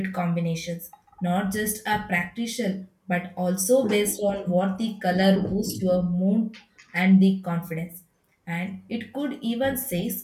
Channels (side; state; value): both; identical; correlation 1.00